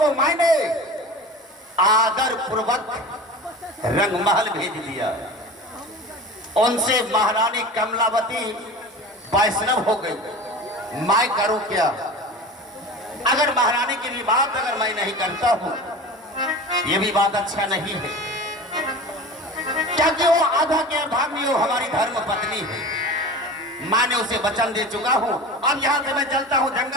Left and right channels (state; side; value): normal; both; correlation 0.34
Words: मैंने आदर पूर्वक रंगमहल भेज दिया, उनसे महारानी कमलावती वैष्णव हो गई। मैं करूं क्या? अगर महारानी की भी बात अगर मैं नहीं करता हूं, ये भी बात अच्छा नहीं है, क्योंकि वो आधा के अर्धांगिनी, वो हमारी धर्म पत्नी है। मैंने उसे वचन दे चुका हूं। अब यहाँ से मैं चलता हूँ